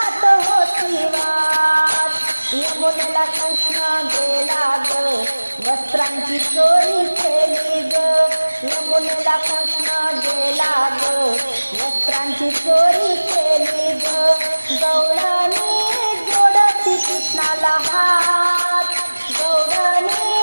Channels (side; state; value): both; inverted; correlation -1.00